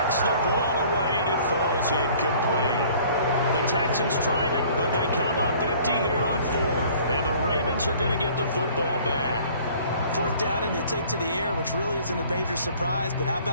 the ball away, and it falls incomplete. The Texans tried it, but they come up empty here on fourth. And the Ravens are going to get the football back. Fourth down, and they take to the air, which really isn't a major surprise. But how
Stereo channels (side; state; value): both; inverted; correlation -0.52